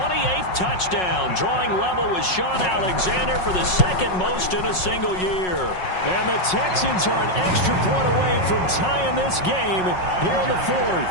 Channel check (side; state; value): right; late; 5.5 ms